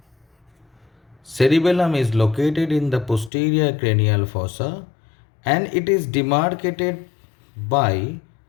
Cerebellum is located in the posterior cranial fossa and it is demarcated by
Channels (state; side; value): drops out; right; at 3.3 s